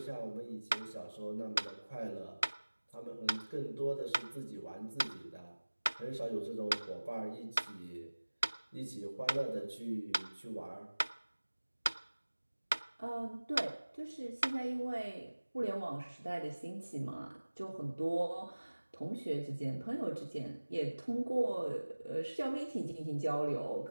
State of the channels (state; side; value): inverted; both; correlation -1.00